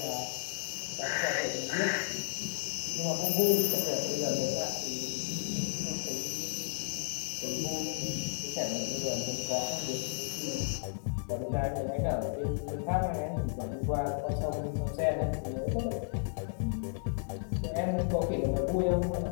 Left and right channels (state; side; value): silent; right; 56 dB below the other